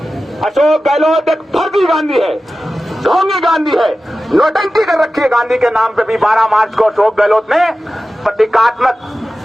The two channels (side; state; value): both; normal; correlation 0.94